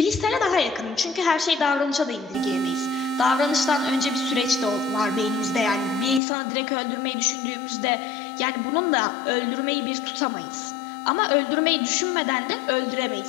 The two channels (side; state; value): right; drops out; at 6.2 s